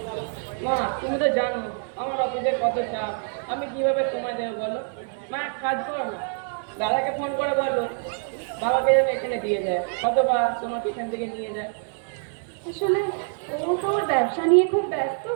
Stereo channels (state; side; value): silent; left; 60 dB below the other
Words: মা তুমি তো জানো আমার অফিসে কত চাপ, আমি কিভাবে সময় দেবো বলো? মা এক কাজ করো না, দাদাকে ফোন করে বলো বাবাকে যেন এখানে দিয়ে যায়, অথবা তোমাকে এখান থেকে নিয়ে যায়। আসলে ও তো ওর ব্যবসা নিয়ে খুব ব্যস্ত,